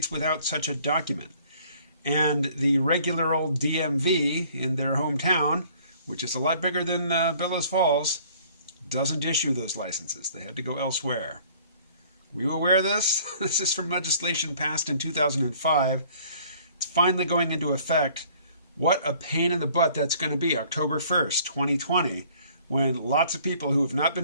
without such a document. And the regular old DMV in their hometown, which is a lot bigger than Bellows Falls, doesn't issue those licenses. They had to go elsewhere. Were you aware of this? This is from legislation passed in 2005. It's finally going into effect. What a pain in the butt that's going to be, October 1st, 2020, when lots of people who have not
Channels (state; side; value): inverted; both; correlation -0.56